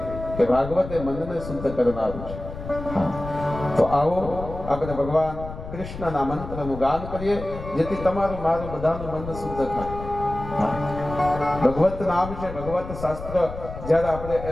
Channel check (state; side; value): noise; left; rumble, 10 dB below the sound